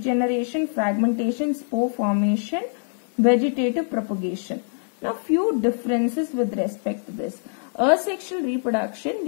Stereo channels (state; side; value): silent; right; digital silence